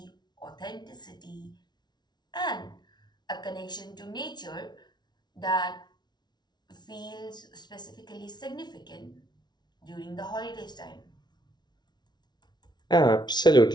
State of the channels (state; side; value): late; right; 0.20 ms